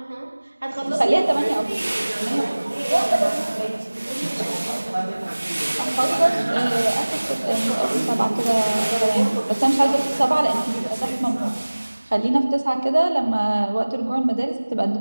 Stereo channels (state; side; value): inverted; both; correlation -1.00